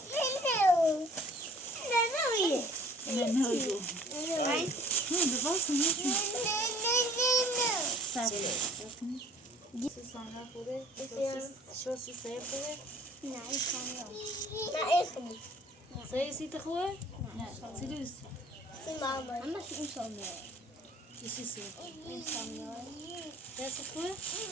نه نگو نه بباس نمیتونی سبیل سوسانه خوبه شوسی سه خوبه سه سیت خوبه نه سی دوست سی سه دست خوبه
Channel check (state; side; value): normal; both; correlation 0.53